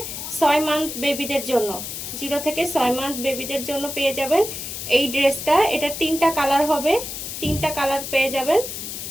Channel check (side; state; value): left; noise; hiss, 7 dB below the sound